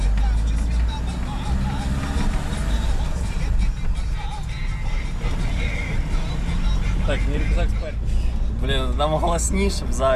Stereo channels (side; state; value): both; identical; correlation 1.00